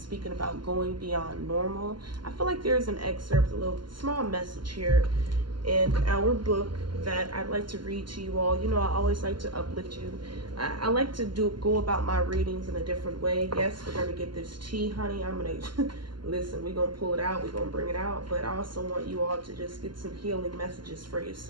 speaking about going beyond normal. I feel like there's an excerpt, a little small message here in our book that I'd like to read to you all. I always like to uplift you. I like to go about my readings in a different way. Yes, we're gonna get this tea, honey. I'm gonna listen, we're gonna pull it out, we're gonna bring it out, but I also want you all to just get some healing messages for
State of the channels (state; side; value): late; left; 0.72 ms